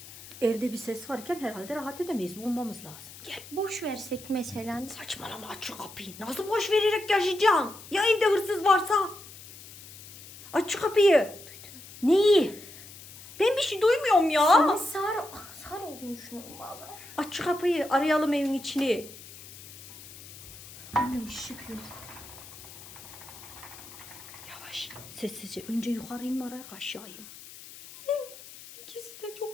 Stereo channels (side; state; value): left; noise; hiss, 17 dB below the sound